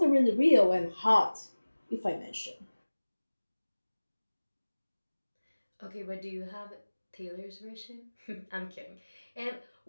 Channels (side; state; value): both; inverted; correlation -1.00